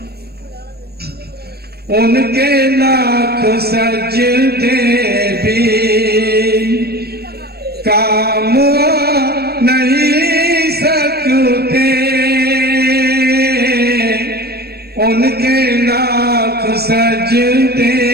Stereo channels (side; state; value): left; late; 0.46 ms